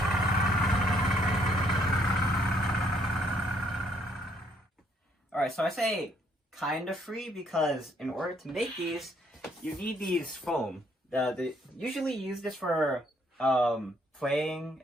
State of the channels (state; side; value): normal; both; correlation 0.68